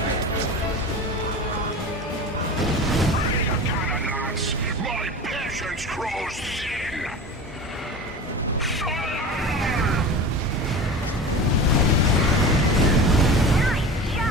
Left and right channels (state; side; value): normal; both; correlation 0.33